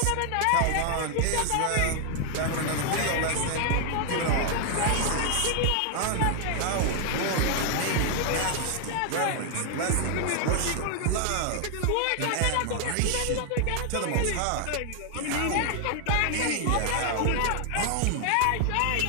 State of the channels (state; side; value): different; both; correlation 0.00